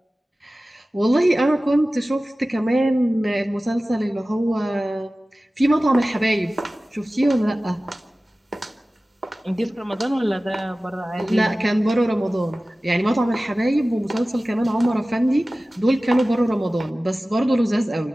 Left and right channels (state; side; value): normal; both; correlation 0.97